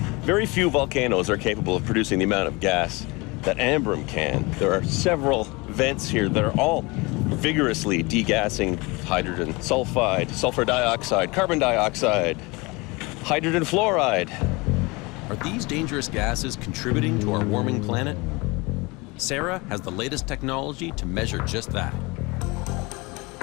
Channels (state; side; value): quieter; right; 25.4 dB